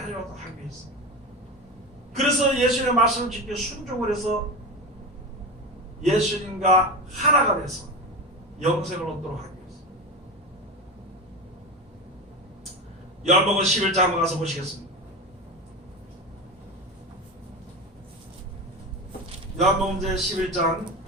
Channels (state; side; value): normal; both; correlation 0.23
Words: 하기 위해서, 그래서 예수님의 말씀을 지켜 순종을 해서 예수님과 하나가 돼서 영생을 얻도록 하기 위해서. 요한복음 11장 한번 가서 보시겠습니다. 요한복음 제 11장